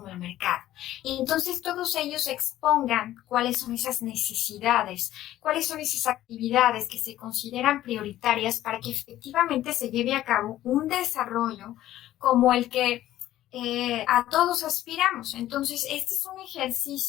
el mercado. Y entonces todos ellos expongan cuáles son esas necesidades, cuáles son esas actividades que se consideran prioritarias para que efectivamente se lleve a cabo un desarrollo como el que a todos aspiramos. Entonces, este es un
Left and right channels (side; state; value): right; quieter; 13.8 dB